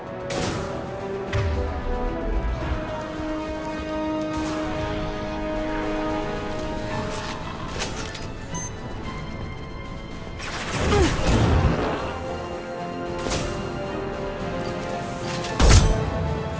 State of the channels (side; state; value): both; identical; correlation 1.00